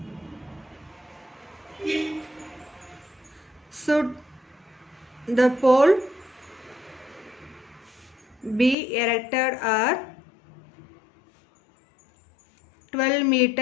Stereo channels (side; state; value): right; drops out; at 8.8 s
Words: should the pole be erected are 12